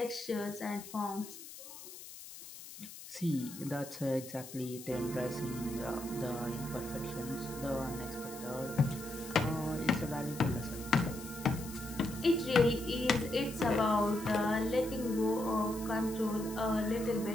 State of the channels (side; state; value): left; noise; hiss, 14 dB below the sound